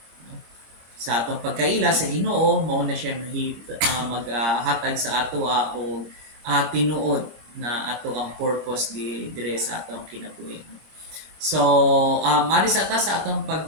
no? Sa atong pagkaila sa Ginoo mao na siya maghatag sa ato og tinuod na ato ang purpose dire sa atong kinabuhi no? So, mari sa atong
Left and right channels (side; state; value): left; late; 26 ms